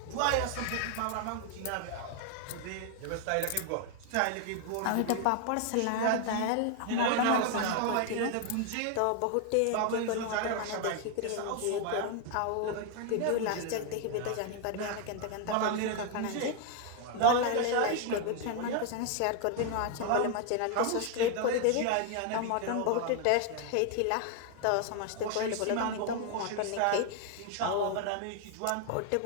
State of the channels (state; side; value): different; both; correlation 0.00